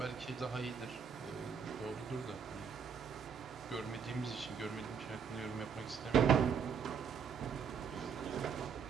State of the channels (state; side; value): quieter; left; 6.7 dB